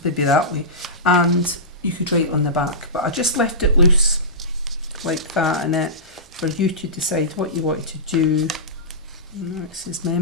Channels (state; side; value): normal; both; correlation -0.18